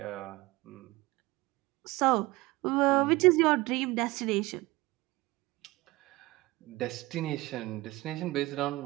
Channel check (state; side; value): quieter; left; 20.6 dB